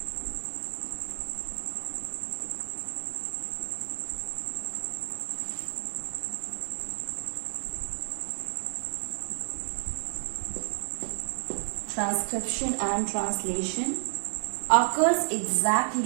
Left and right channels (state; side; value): silent; left; 57 dB below the other